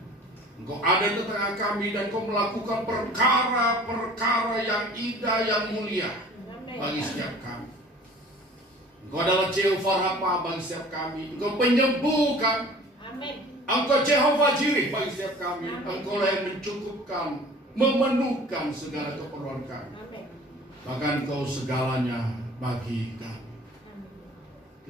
Engkau ada di tengah kami dan Engkau melakukan perkara-perkara yang indah, yang mulia bagi setiap kami. Engkau adalah Jehovah Rafa bagi setiap kami. Engkau penyembuhkan. Engkau Jehovah Jireh bagi setiap kami. Engkau lah yang mencukupkan, memenuhkan segala keperluan kami. Bahkan Engkau segalanya bagi kami.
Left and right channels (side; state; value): both; normal; correlation 0.47